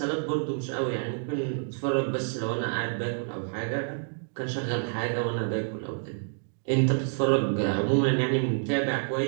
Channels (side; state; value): left; silent; digital silence